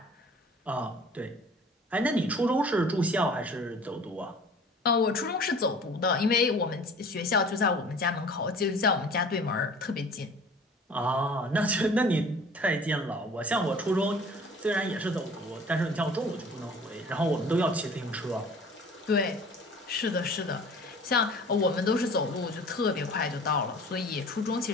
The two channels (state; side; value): normal; both; correlation 0.46